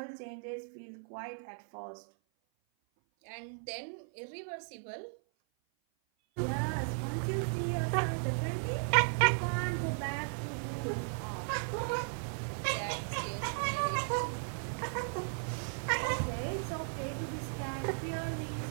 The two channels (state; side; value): silent; left; 54 dB below the other